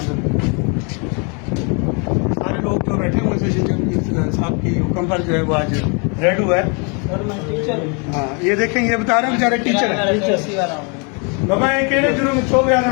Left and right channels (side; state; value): right; quieter; 35.1 dB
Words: सारे लोग जो बैठे हुए सेशन जज साहब के हुक्म पर जो है वो आज रेड हुआ है। हाँ ये देखें ये बता रहे हैं बेचारे टीचर है बाबा ये केड़े जुर्म में छो